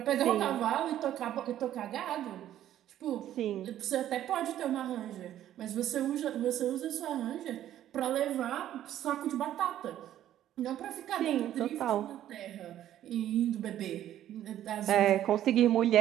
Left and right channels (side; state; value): left; quieter; 12.0 dB